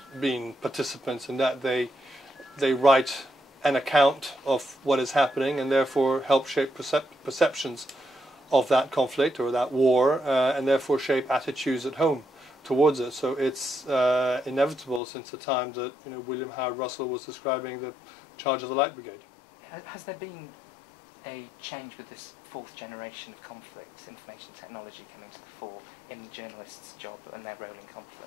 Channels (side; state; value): right; drops out; at 15.0 s